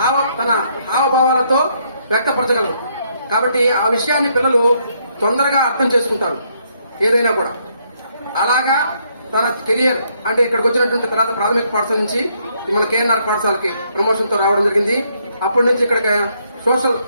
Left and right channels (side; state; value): both; inverted; correlation -0.72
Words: తన హావభావాలతో వ్యక్తపరచగలరు. కాబట్టి ఆ విషయాన్ని పిల్లలు తొందరగా అర్థం చేసుకుంటారు ఏదైనా కూడా. అలాగా తన కెరియర్ అంటే ఇక్కడికి వచ్చినటువంటి తర్వాత ప్రాథమిక పాఠశాల నుంచి మన కేఎన్ఆర్ పాఠశాలకి ప్రమోషన్ తో రావడం జరిగింది. అప్పటి నుంచి ఇక్కడ సోషల్